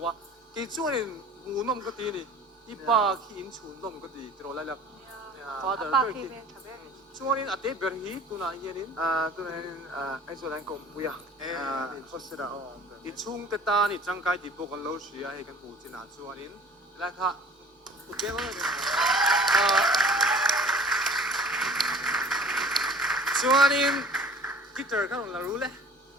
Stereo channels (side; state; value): both; normal; correlation 0.48